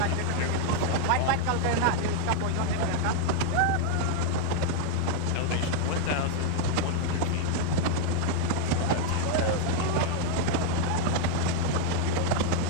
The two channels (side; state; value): both; different; correlation 0.00